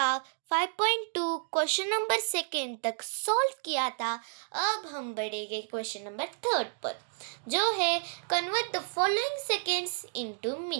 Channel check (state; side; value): silent; left; digital silence